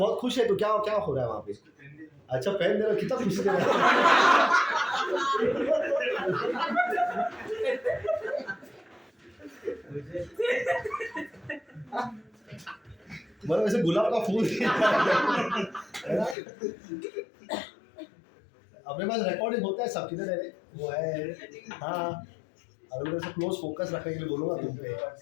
खुश है तो क्या हो रहा है वहां पे? अच्छा, पेन दे रहा, कितना खुशी दे रहा मतलब ऐसे गुलाब का फूल है ना? अपने पास रिकॉर्डिंग होता है सब, किधर है वो है? हाँ, अगर मैं क्लोज फोकस रखने के लिए बोलूंगा तुम पे,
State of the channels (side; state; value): right; drops out; at 16.4 s